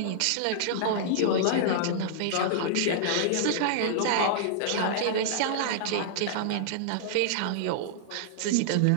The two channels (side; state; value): both; different; correlation -0.01